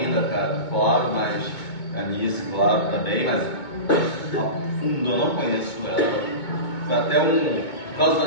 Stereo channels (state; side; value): late; right; 2.2 ms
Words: cara, claro, mas a Nice, claro, também, mas a fundo eu não conheço ela. Foi até por causa da